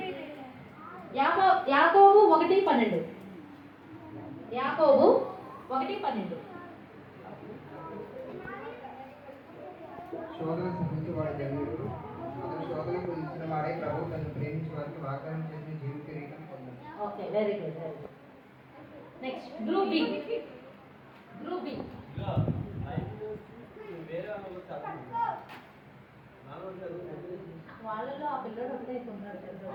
యాకోబు 1:12. యాకోబు 1:12. శోధన సహించి వాడి ధన్యుడు, అతను శోధనకు ఇచ్చిన వాడే ప్రభు తను ప్రేమించి వారికి వాగ్దానం చేసిన జీవ కిరీటం పొందాడు. Okay, very good. Next group B. వాళ్ళలో ఆ పిల్లడు ఒకటే ఉన్నాడు.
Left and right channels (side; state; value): both; identical; correlation 1.00